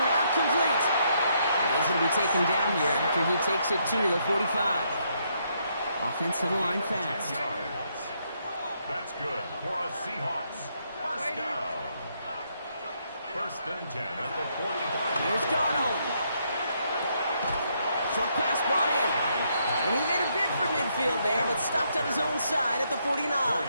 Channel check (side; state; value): both; inverted; correlation -0.74